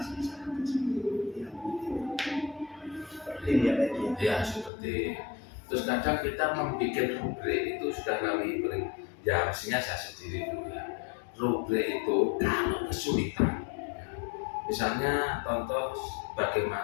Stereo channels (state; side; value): drops out; right; at 4.7 s